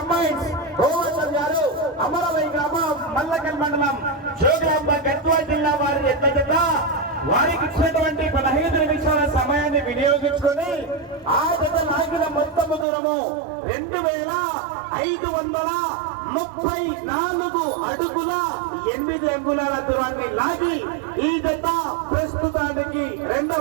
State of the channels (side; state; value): left; drops out; at 12.9 s